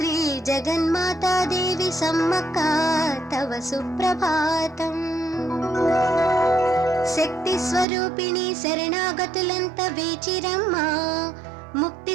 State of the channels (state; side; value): drops out; left; at 7.9 s